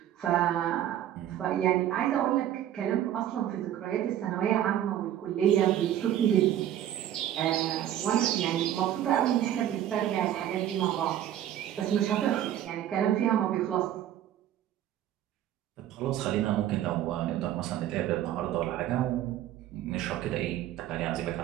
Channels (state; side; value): quieter; left; 11.7 dB